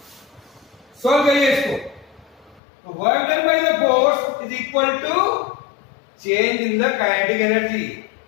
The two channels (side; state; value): right; drops out; at 2.6 s